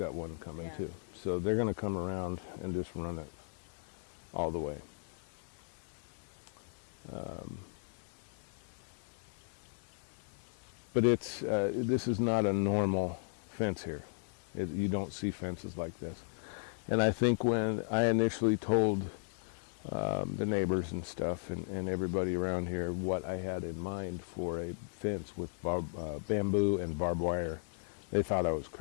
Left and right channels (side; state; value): right; silent; digital silence